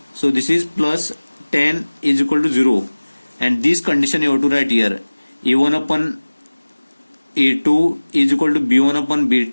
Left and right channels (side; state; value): both; inverted; correlation -1.00